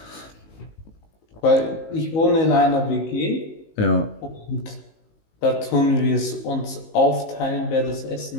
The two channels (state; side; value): late; right; 19 ms